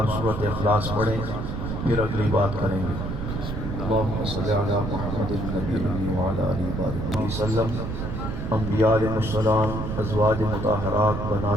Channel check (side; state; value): right; noise; rumble, 4 dB below the sound